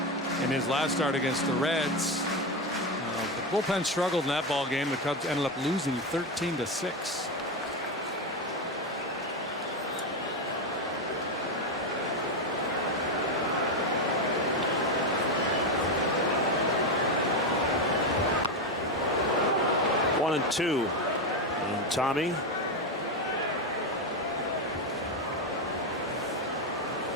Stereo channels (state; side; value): normal; both; correlation 0.11